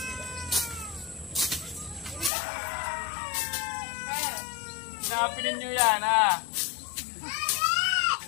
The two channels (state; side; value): drops out; right; at 2.3 s